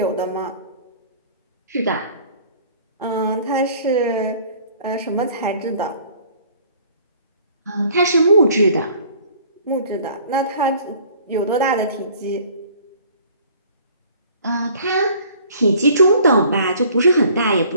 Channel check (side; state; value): both; inverted; correlation -0.52